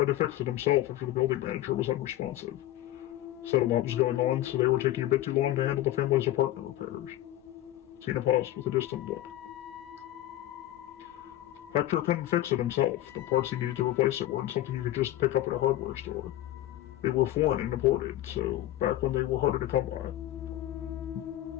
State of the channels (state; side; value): quieter; right; 14.3 dB